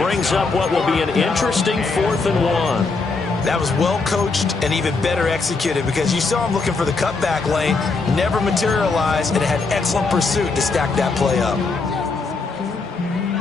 up what will be an interesting 4th and 1. That was well coached and even better executed because you saw him looking for the cutback lane, never materialized, and it had excellent pursuit to stack that play up.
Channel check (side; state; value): right; quieter; 4.1 dB